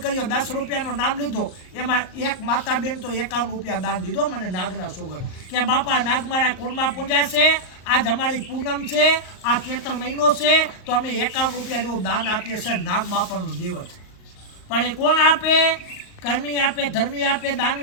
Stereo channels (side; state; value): right; late; 38 ms